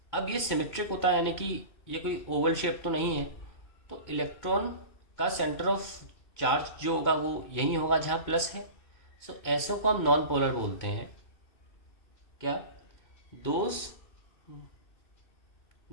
अब ये सिमेट्रिक होता है, यानी कि ये कोई ओवल शेप तो नहीं है, तो इलेक्ट्रॉन का सेंटर ऑफ चार्ज जो होगा वो यही होगा जहाँ प्लस है। सो ऐसों को हम नॉन पोलर बोलते हैं। क्या? Those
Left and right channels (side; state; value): right; late; 2.2 ms